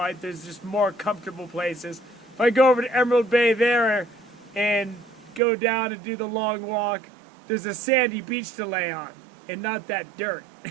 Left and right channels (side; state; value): left; drops out; at 5.4 s